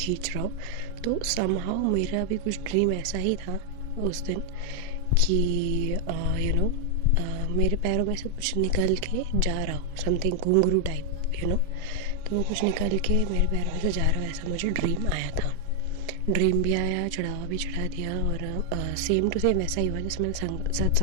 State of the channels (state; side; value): different; both; correlation 0.00